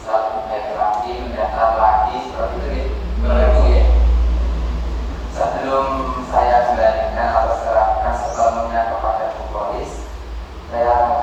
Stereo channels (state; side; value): identical; both; correlation 1.00